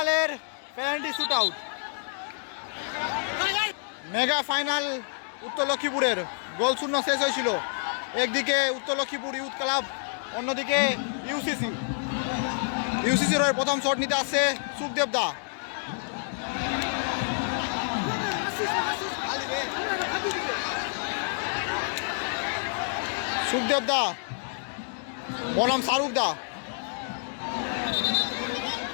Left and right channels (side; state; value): right; silent; digital silence